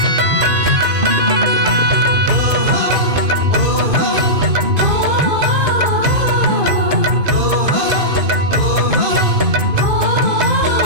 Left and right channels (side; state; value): left; late; 2.5 ms